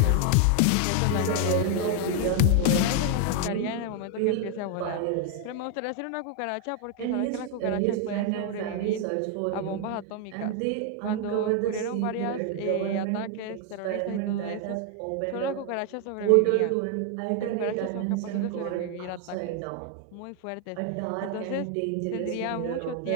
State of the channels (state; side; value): different; both; correlation 0.00